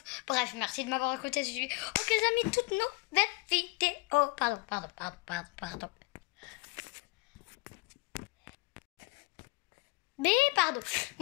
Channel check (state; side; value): quieter; right; 26.5 dB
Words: Bref, merci de m'avoir écouté. Ok, les amis, toutes nouvelles vidéos. Pardon. Mais pardon.